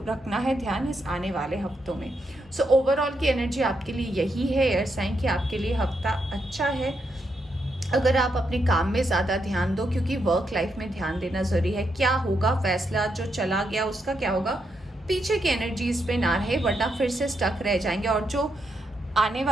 रखना है ध्यान इस आने वाले हफ्तों में। सो ओवरऑल की एनर्जी आपके लिए यही है एयर साइन कि आपके लिए हफ्ता अच्छा है। अगर आप अपने काम में ज़्यादा ध्यान दो, क्योंकि वर्क लाइफ में ध्यान देना ज़रूरी है। क्या होगा, फैसला जो चला गया उसका क्या होगा, पीछे की एनर्जीज पे ना रहे, वरना फिर से स्टक रह जाएंगे। और जो आने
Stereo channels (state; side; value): normal; both; correlation 0.81